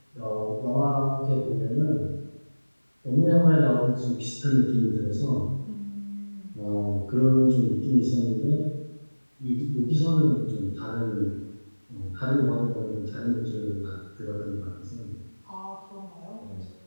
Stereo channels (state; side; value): inverted; both; correlation -1.00